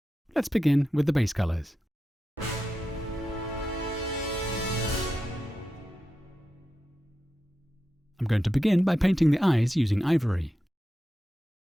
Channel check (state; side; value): normal; both; correlation 0.90